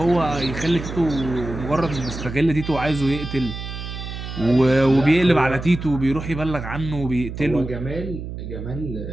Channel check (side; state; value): right; noise; hum, 8 dB below the sound